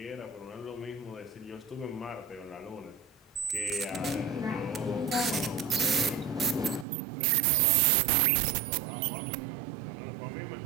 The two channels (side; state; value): left; drops out; at 6.9 s